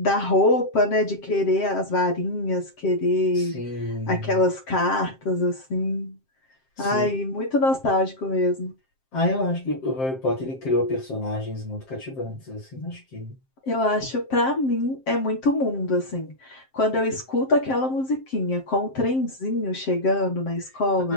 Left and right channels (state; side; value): late; right; 7.6 ms